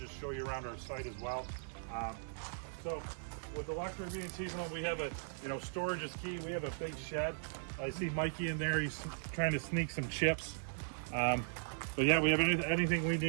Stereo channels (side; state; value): left; silent; digital silence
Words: show you around our site as well. So with the luxury of being seasonal, we have a, storage is key. We have a big shed. I see Mikey in there. He's trying to sneak some chips. But yeah, we have anything we